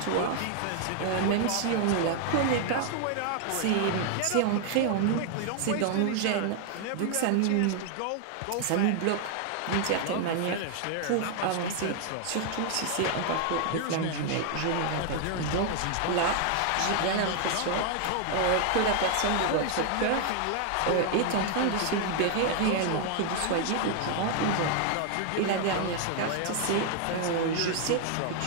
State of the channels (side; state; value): both; different; correlation 0.00